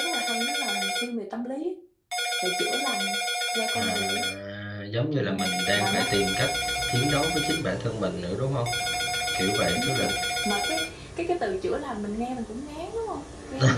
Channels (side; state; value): both; identical; correlation 1.00